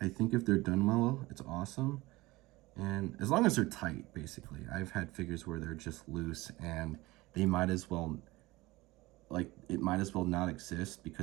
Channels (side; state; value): left; quieter; 20.4 dB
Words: I think if they're done well, it's awesome. And as long as they're tight, basically. I've had figures where they're just loose and they might as well, it might as well not exist